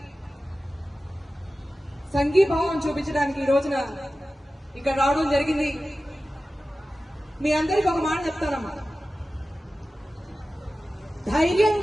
సంఘీభావం చూపించడానికి ఈ రోజున ఇక్కడ రావడం జరిగింది. మీ అందరికి ఒక మాట చెప్తానమ్మా,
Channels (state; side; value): normal; both; correlation 0.95